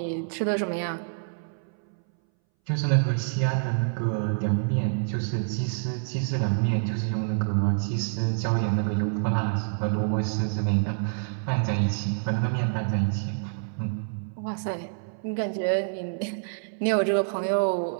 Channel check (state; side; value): silent; left; 60 dB below the other